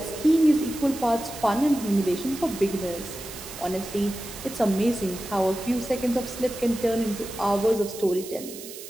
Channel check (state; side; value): noise; right; hiss, 13 dB below the sound